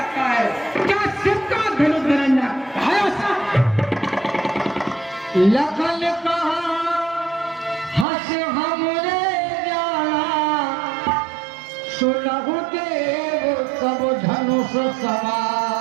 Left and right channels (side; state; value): left; drops out; at 8.1 s